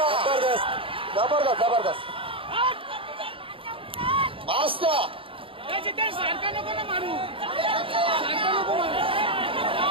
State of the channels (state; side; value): late; left; 0.26 ms